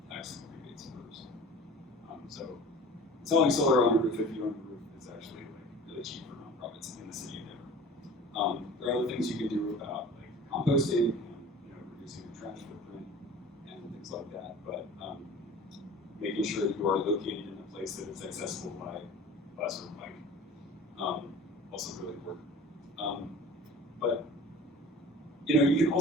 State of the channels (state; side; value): normal; both; correlation 0.42